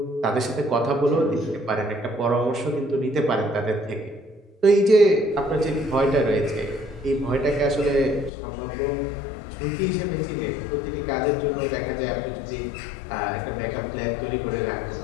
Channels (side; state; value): right; drops out; at 8.3 s